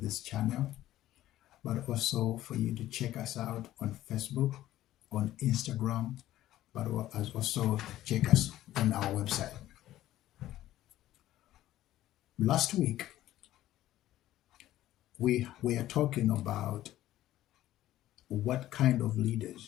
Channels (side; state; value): right; quieter; 14.1 dB